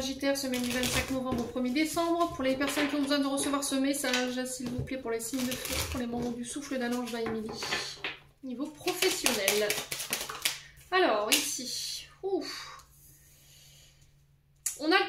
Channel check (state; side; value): identical; both; correlation 1.00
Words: semaine du 25 novembre au 1er décembre. Pour les personnes qui ont besoin de recevoir ce message, s'il vous plaît, pour les signes de feu, pour les membres du souffle d'un ange Émilie. Niveau professionnel. Alors, ici, ouf. On a